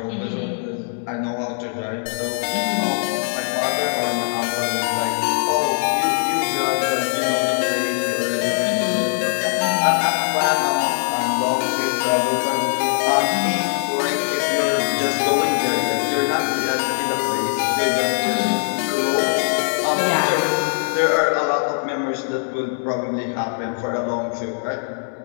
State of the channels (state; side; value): silent; right; 63 dB below the other